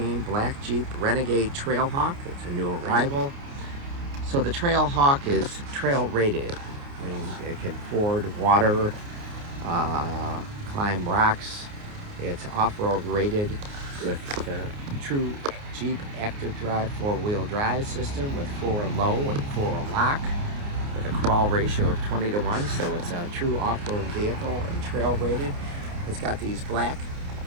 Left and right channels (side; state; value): left; late; 29 ms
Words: black Jeep Renegade Trailhawk. It's a new arrival. So the Trailhawk is trail rated. I mean, it can ford water, climb rocks. It's off-road rated with the true Jeep active drive 4-wheel drive system with 4 low and 4 lock, with a crawl ratio of 20:1, so it's a true off-road vehicle and trail rated. It's got these black